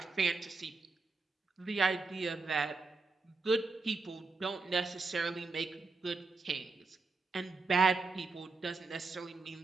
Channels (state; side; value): quieter; left; 4.0 dB